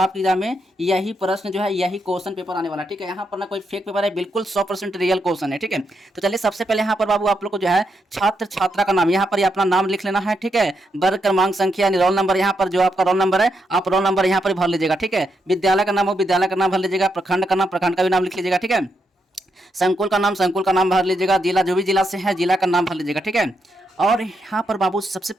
एग्जाम में यही प्रश्न जो है यही क्वेश्चन पेपर आने वाला है। ठीक है, यहाँ पर ना कोई फेक पेपर है, बिल्कुल 100% रियल क्वेश्चन है। ठीक है, तो चलिए सबसे पहले यहाँ पर बाबू आप लोग को जो है छात्र छात्रा का नाम यहाँ पर अपना नाम लिख लेना है। ठीक है, वर्ग क्रमांक संख्या रोल नंबर, यहाँ पर जो आपका रोल नंबर है आप रोल नंबर यहाँ पर भर लीजिएगा। ठीक है, विद्यालय का नाम हो विद्यालय का नाम भर लीजिएगा, प्रखंड का नाम प्रखंड का भी नाम लिख लीजिएगा। ठीक है, संकुल का नाम संकुल का नाम भर लीजिएगा, जिला जो भी जिला से है जिला का नाम भर लीजिएगा। ठीक है, और यहाँ पर बाबू सबसे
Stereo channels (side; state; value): both; normal; correlation 0.81